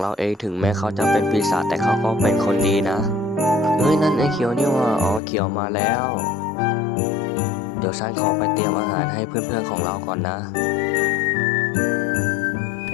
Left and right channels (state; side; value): drops out; right; at 5.2 s